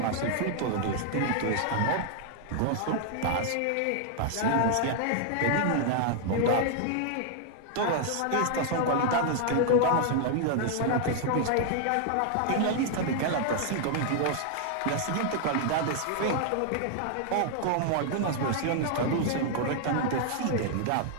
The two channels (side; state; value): both; different; correlation 0.00